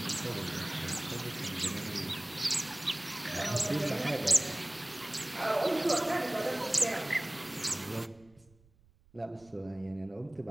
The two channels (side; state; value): right; noise; rumble, 30 dB below the sound